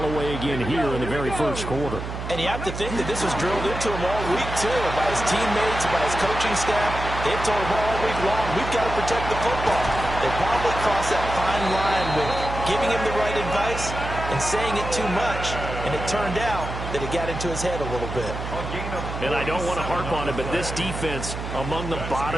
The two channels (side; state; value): right; noise; hum, 7 dB below the sound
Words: away again here in the very first quarter. And you have to think that this was drilled into him all week, too, by his teammates, by his coaching staff. They've told him all week long, we've got to protect the football. They probably crossed that fine line with giving him the right advice and saying it too much, and it turned out that it got into his head a little bit. And I don't want to harp on it, but this defense among the